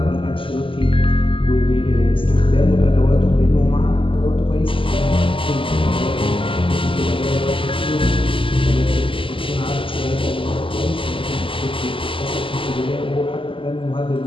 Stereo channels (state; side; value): late; right; 0.25 ms